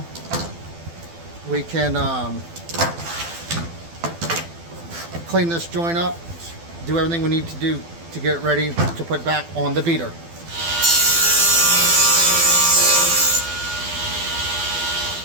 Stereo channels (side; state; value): left; late; 12 ms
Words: we can clean this joint up, do everything we need to do to get it ready to put back on the beater.